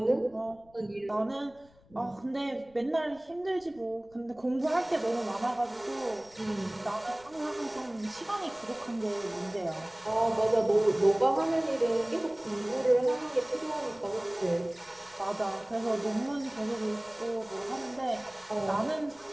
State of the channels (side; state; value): left; noise; rumble, 28 dB below the sound